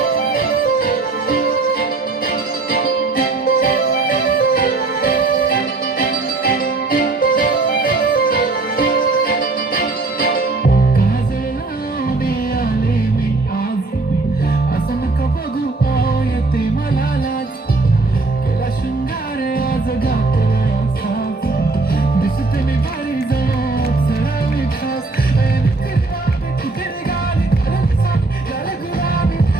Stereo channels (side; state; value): left; quieter; 3.5 dB